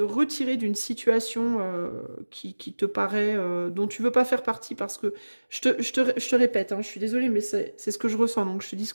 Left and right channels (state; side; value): inverted; both; correlation -1.00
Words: retirer d'une situation qui te paraît, dont tu veux pas faire partie parce que, je te répète, hein, je suis désolée, mais c'est ce que je ressens, donc je te dis ce